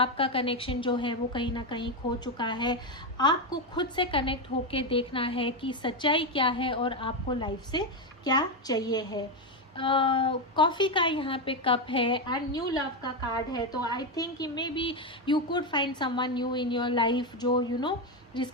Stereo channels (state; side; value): normal; both; correlation 0.09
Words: कनेक्शन जो है वो कहीं ना कहीं खो चुका है। आपको खुद से कनेक्ट होके देखना है कि सच्चाई क्या है और आपको लाइफ से क्या चाहिए है। कॉफ़ी का यहाँ पे कप है एंड न्यू लव का कार्ड है। तो I think may be you could find someone new in your life, जो